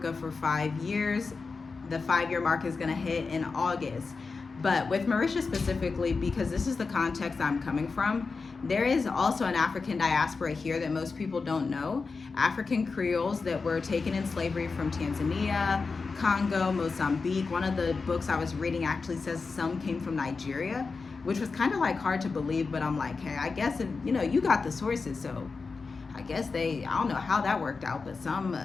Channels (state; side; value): quieter; right; 4.5 dB